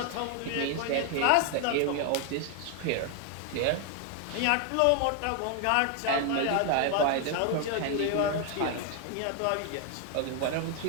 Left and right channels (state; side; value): different; both; correlation 0.01